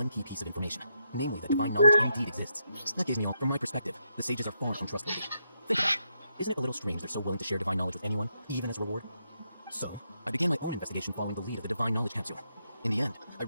key piece of information, namely that divine knowledge indeed exists. That gave me all. From my perspective, the sages are far from trustworthy. Think about it. Isn't it a little strange they're so willing to share divine knowledge with anyone, even as a reward? So, I began my own investigation following the lead of the Divine Knowledge Capsule. In the end, I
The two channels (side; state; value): both; inverted; correlation -0.81